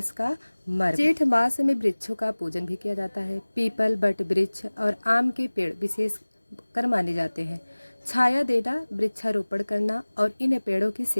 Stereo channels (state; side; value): inverted; both; correlation -1.00